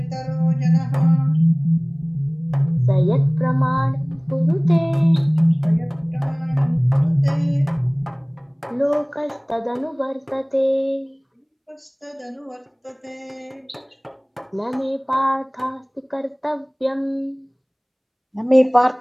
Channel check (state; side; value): identical; both; correlation 1.00